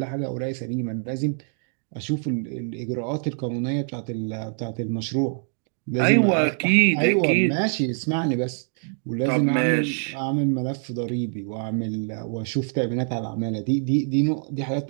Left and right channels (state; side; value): silent; left; 55 dB below the other